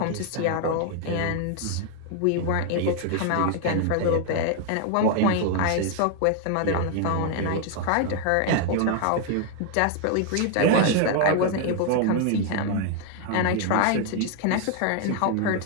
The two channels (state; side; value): different; both; correlation 0.00